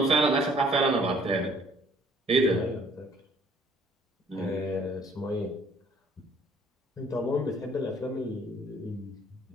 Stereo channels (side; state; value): both; normal; correlation 0.59